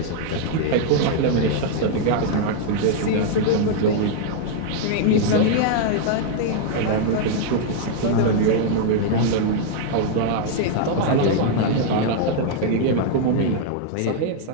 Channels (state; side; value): different; both; correlation -0.01